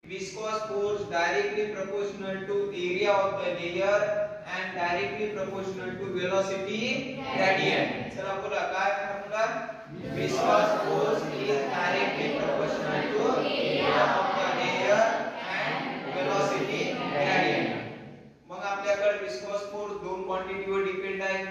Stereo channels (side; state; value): both; identical; correlation 1.00